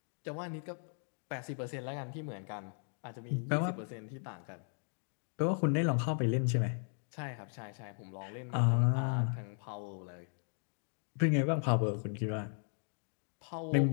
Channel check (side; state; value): right; silent; 53 dB below the other